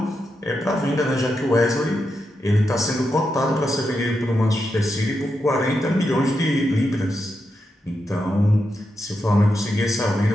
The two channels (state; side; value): normal; both; correlation 0.86